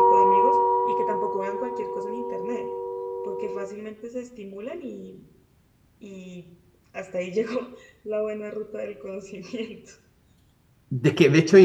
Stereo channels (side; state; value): both; identical; correlation 1.00